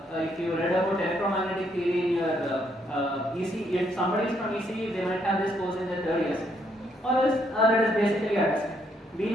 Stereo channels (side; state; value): both; normal; correlation 0.72